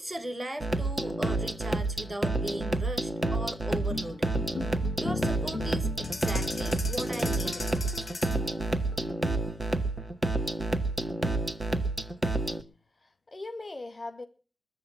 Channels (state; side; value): normal; both; correlation 0.79